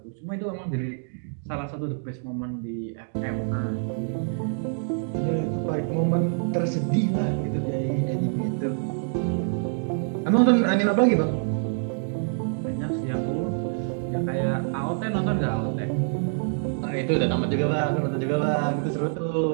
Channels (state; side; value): silent; left; digital silence